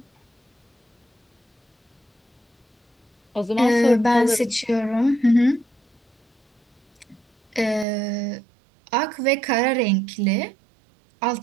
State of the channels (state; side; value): drops out; left; at 7.9 s